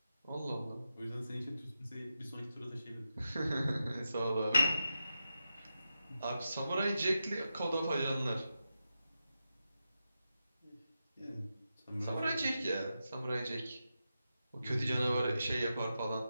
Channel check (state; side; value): inverted; both; correlation -0.89